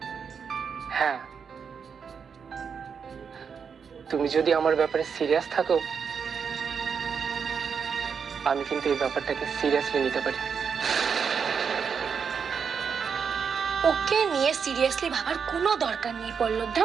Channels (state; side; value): quieter; left; 6.4 dB